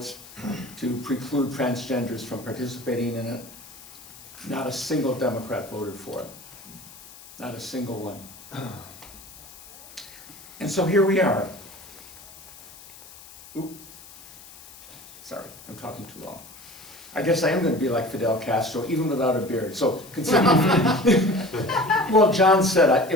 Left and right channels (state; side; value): noise; left; hiss, 19 dB below the sound